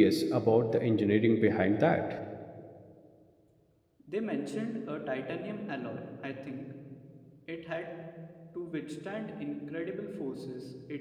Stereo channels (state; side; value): identical; both; correlation 1.00